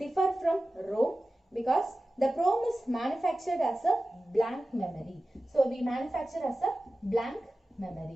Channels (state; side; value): normal; both; correlation 0.95